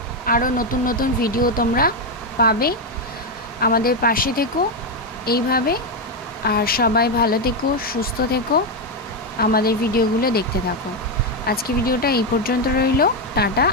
আরও নতুন নতুন ভিডিও তোমরা পাবে। আমাদের পাশে থেকো এইভাবে, আর সবাই ভালো থেকো, সুস্থ থেকো, আমাদের ভিডিওগুলো দেখতে থাকো। আজকে ভিডিওটা এই পর্যন্ত রইল, টাটা।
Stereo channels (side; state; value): both; normal; correlation 0.06